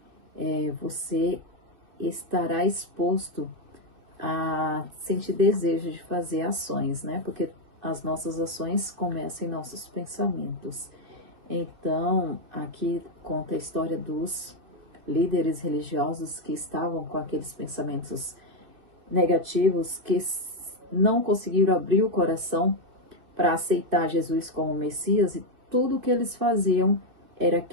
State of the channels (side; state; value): left; late; 2.7 ms